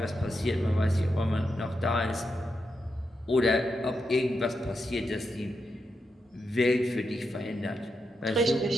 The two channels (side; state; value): both; normal; correlation 0.86